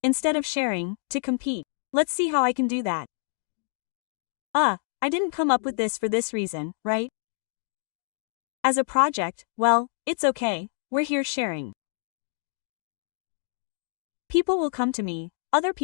Instead of sharing, to compete. Let's see how I can do that. I didn't come up with this for this reason, right? As a project, well, it's okay, we're here sharing. People will come to me, other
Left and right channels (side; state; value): right; silent; digital silence